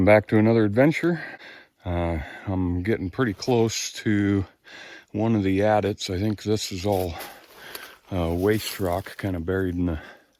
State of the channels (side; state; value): both; identical; correlation 1.00